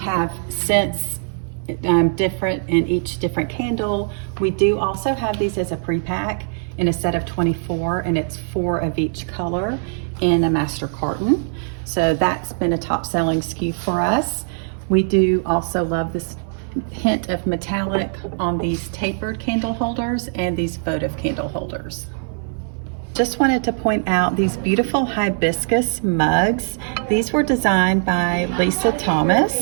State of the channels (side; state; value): left; silent; 58 dB below the other